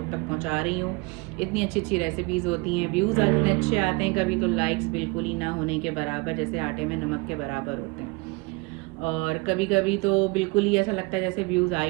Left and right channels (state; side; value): quieter; left; 26.7 dB